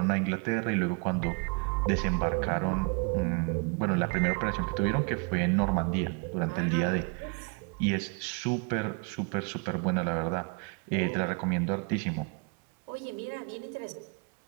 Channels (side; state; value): left; quieter; 35.3 dB